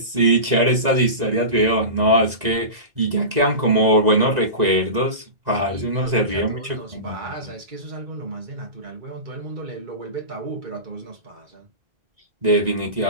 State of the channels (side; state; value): left; late; 1.9 ms